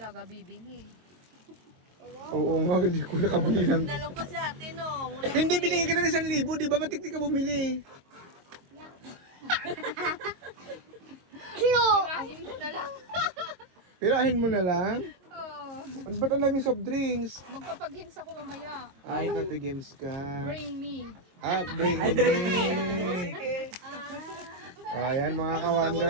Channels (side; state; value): left; late; 22 ms